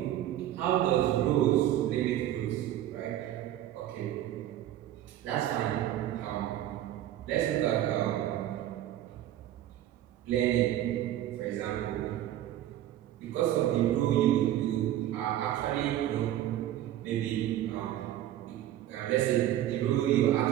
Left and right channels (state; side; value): quieter; left; 12.7 dB